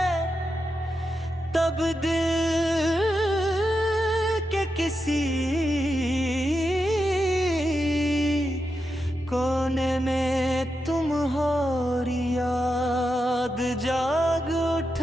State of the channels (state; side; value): normal; both; correlation 0.87